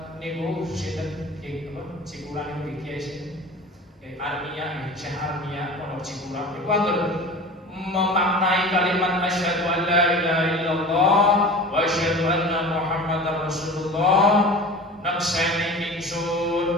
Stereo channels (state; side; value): normal; both; correlation 0.37